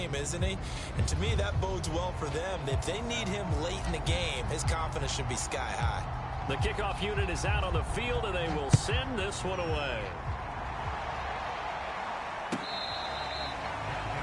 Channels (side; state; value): both; identical; correlation 1.00